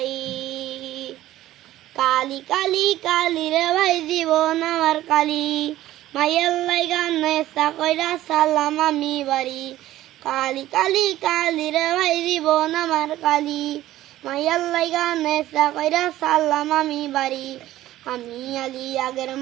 কালি কালি কালি রে ভাই জীবন আমার কালি, মাইয়ার লাইগা নেশা কইরা সালাম আমি বাড়ি। কালি কালি কালি রে ভাই জীবন আমার কালি, মাইয়ার লাইগা নেশা কইরা সালাম আমি বাড়ি। আমি আলী আগের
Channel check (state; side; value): quieter; left; 14.6 dB